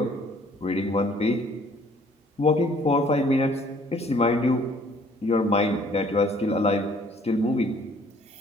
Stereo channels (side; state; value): both; normal; correlation 0.59